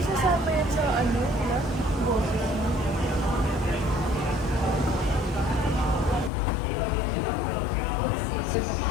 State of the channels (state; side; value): drops out; right; at 6.3 s